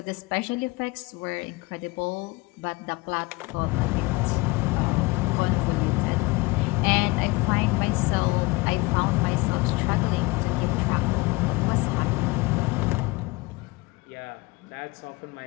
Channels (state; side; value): quieter; right; 24.0 dB